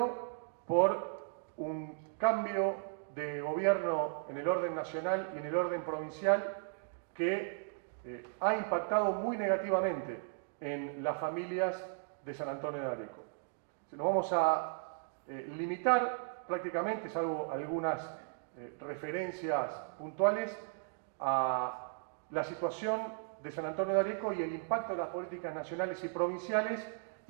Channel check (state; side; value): silent; left; digital silence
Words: por un cambio de gobierno en el orden nacional y en el orden provincial que ha impactado muy negativamente en las familias de San Antonio de Areco. Nos vamos a limitar prácticamente, salvo algunas referencias puntuales, a la situación de San Antonio de Areco y el impacto de las políticas nacionales y provinciales